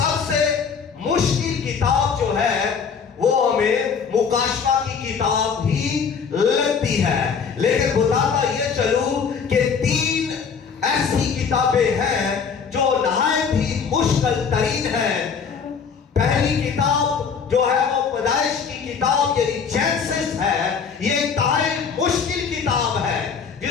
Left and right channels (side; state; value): right; quieter; 6.2 dB